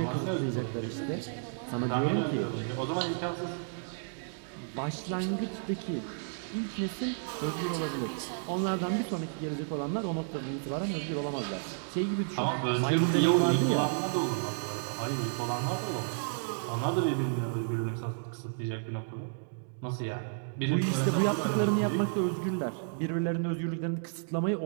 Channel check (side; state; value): left; silent; digital silence